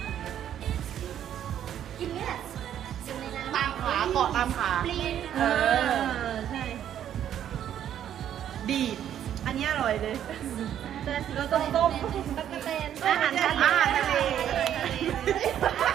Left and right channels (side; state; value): left; quieter; 10.3 dB